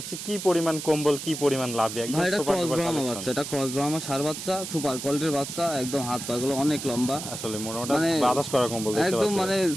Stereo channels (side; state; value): right; noise; hiss, 8 dB below the sound